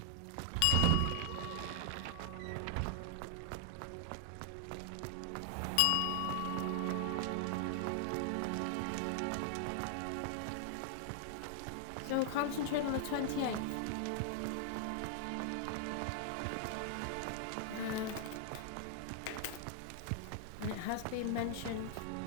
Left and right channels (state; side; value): different; both; correlation 0.00